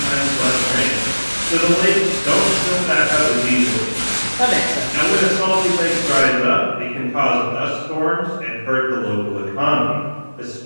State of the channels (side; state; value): both; inverted; correlation -1.00